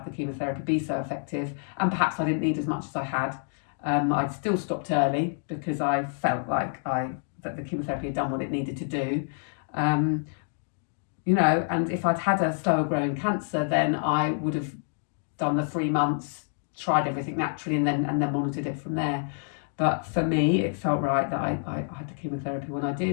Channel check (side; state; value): right; silent; digital silence